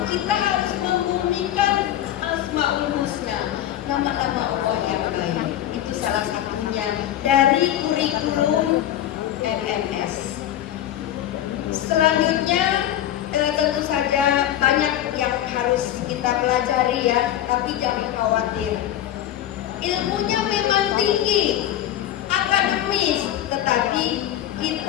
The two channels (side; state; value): right; quieter; 12.1 dB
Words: kita harus membumikan Asmaul Husna, nama-nama Allah yang baik. Itu salah satunya dari kurikulum MMS. Selanjutnya tentu saja banyak yang harus kita pelajari ya, tapi jangan khawatir. Ilmunya memang tinggi, akademis, tetapi